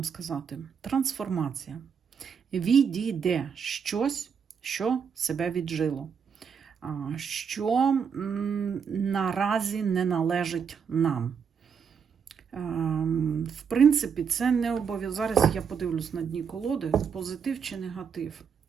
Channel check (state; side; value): quieter; left; 6.7 dB